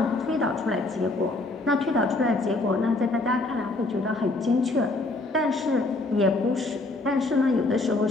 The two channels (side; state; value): right; quieter; 3.0 dB